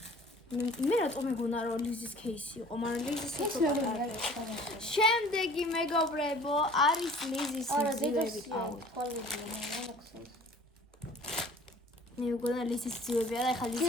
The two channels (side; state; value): both; normal; correlation 0.49